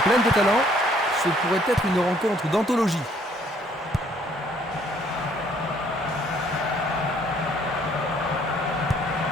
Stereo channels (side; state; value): both; normal; correlation 0.63